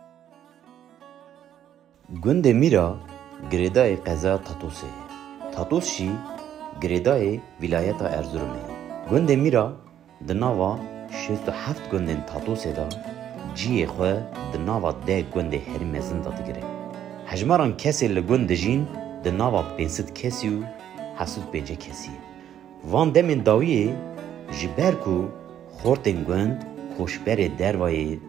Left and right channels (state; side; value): quieter; left; 10.5 dB